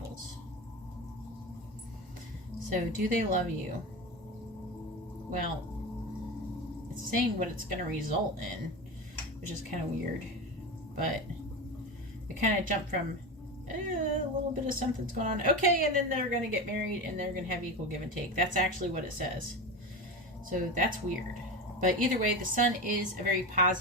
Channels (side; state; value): both; normal; correlation 0.23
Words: So, do they love you? Well, it's saying what it's going to result in, which is kind of weird. But it kind of jumped from a little bit of something's going on. Okay, and then they're going to get married and they're going to have equal give and take. That's actually what it says. So, that's weird. But either way, the Sun is a very